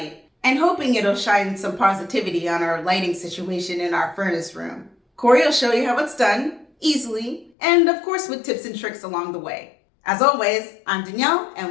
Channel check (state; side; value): drops out; right; at 7.5 s